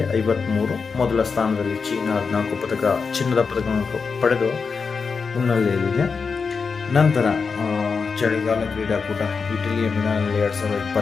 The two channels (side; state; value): right; quieter; 5.2 dB